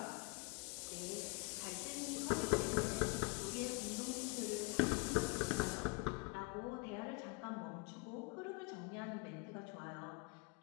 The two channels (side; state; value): right; quieter; 29.4 dB